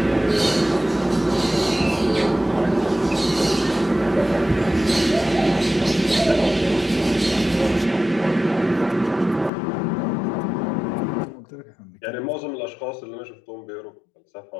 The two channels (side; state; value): right; drops out; at 9.5 s